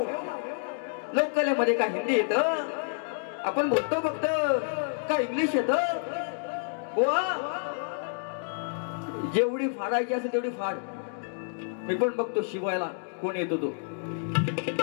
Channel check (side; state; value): right; silent; digital silence